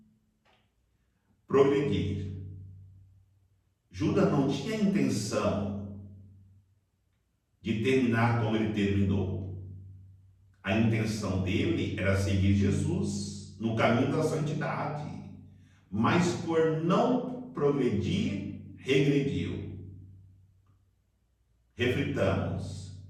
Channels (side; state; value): both; identical; correlation 1.00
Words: progredir. Judas não tinha intenção de terminar como ele terminou. A intenção dele era seguir Jesus no caminho da santidade, mas por não progredir, regrediu. Reflitamos,